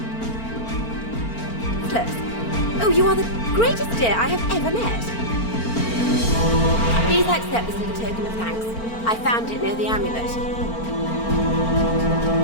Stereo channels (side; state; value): right; late; 4.4 ms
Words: Oh, you are the greatest dear I have ever met. Please accept this little token of thanks. I found it near the amulet.